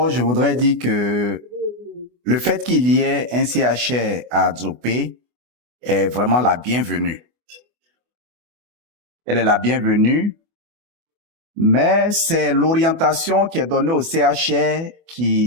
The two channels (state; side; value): late; left; 24 ms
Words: je voudrais dire que le fait qu'il y ait un CHR à Adzopé est vraiment la bienvenue. Elle est la bienvenue, mais c'est l'orientation qui est donnée au CHR